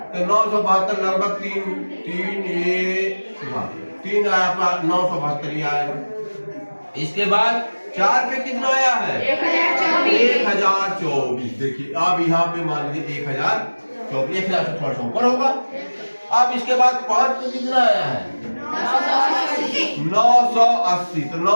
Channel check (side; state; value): both; inverted; correlation -1.00